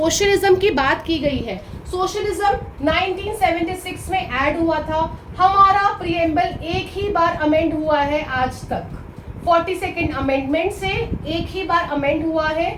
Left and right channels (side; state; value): both; identical; correlation 1.00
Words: की बात की गई है. सोशलिज्म 1976 में ऐड हुआ था. हमारा प्रिएम्बल एक ही बार अमेंड हुआ है आज तक. 42nd अमेंडमेंट से एक ही बार अमेंड हुआ है,